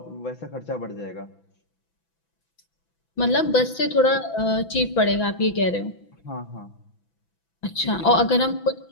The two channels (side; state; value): right; late; 6.0 ms